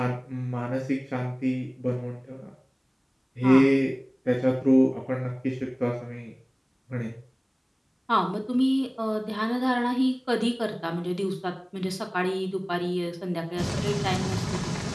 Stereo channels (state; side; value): identical; both; correlation 1.00